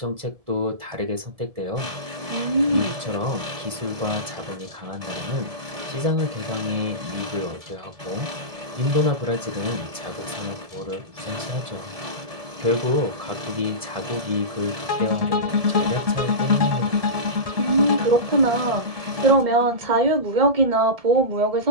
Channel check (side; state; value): left; late; 1.7 ms